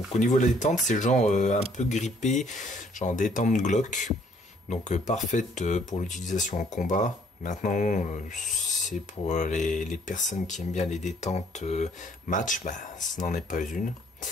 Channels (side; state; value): both; normal; correlation 0.63